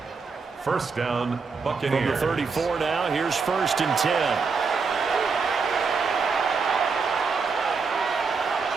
1st down, Buccaneers. From the 34 now, here's 1st and 10.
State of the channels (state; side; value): quieter; left; 5.0 dB